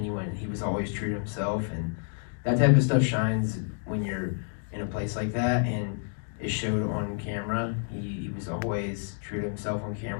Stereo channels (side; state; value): right; silent; 58 dB below the other